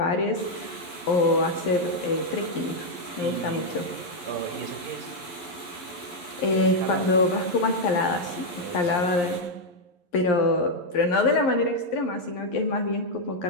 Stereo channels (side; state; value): right; late; 11 ms